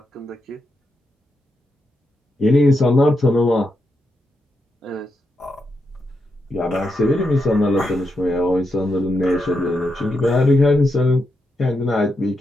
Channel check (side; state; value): both; normal; correlation 0.84